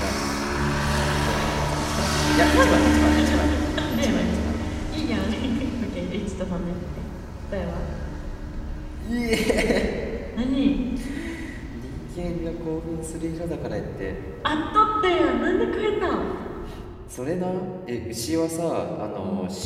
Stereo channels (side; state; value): both; identical; correlation 1.00